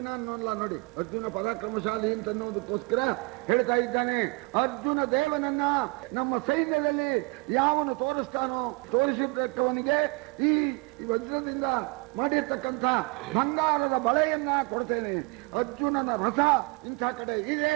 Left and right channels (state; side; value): quieter; left; 28.3 dB